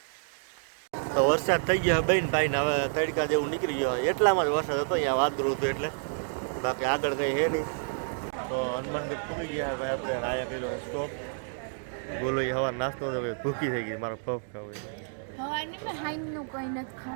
તો વરસાદ થઈ ગયો બેન ભાઈ ને હવે તડકા જેવું નીકળી ગયો. એટલામાં જ વરસાદ હતો અહીંયા વાદળું હતું એટલે, બાકી આગળ કંઈ હે નહીં. તો હનુમાનગઢ પૂરી ગયા ભાઈ આપણે. આયા કર્યો સ્ટોપ. બોલો એ હવા નાસ્તો તો ભૂખી થઈ ગઈ. મારો પફ ખાવું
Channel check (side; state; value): left; silent; digital silence